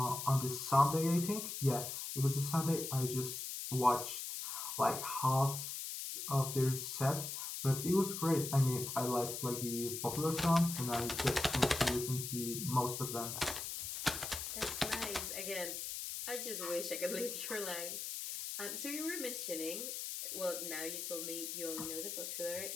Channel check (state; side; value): noise; left; hiss, 5 dB below the sound